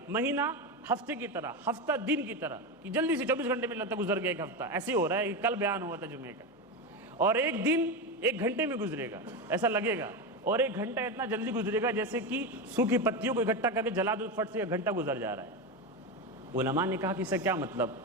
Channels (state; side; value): normal; both; correlation 0.16